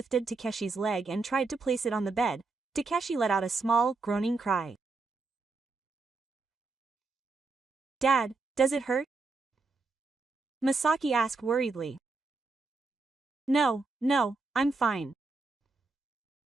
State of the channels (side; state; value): left; quieter; 3.9 dB